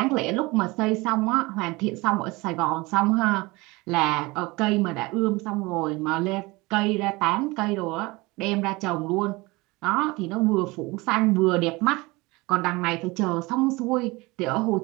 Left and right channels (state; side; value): quieter; left; 23.2 dB